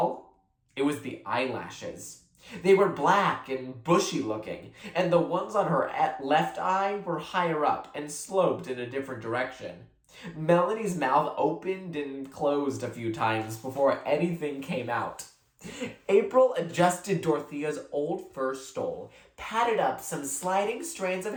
it was the eyelashes. They were black and bushy looking, and the ones on her left eye were higher up and sloped in a different direction. Melanie's mouth opened and closed a few times before anything came out. April adjusted Dorothea's old fur stole, patted up some sliding strands of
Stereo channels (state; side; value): identical; both; correlation 1.00